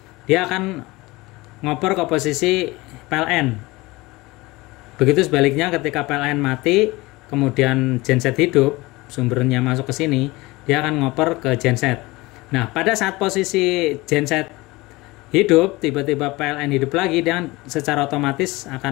dia akan ngoper ke posisi PLN. Begitu sebaliknya ketika PLN mati, kemudian genset hidup, sumbernya masuk ke sini, dia akan ngoper ke genset. Nah, pada saat posisi genset hidup, tiba-tiba PLN hidup lagi, dia secara otomatis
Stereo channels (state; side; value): quieter; right; 21.6 dB